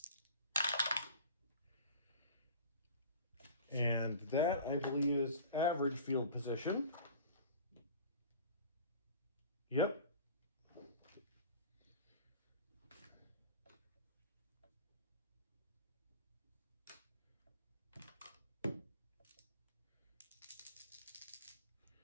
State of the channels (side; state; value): both; inverted; correlation -0.41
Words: And that, I believe, is average field position. Yep.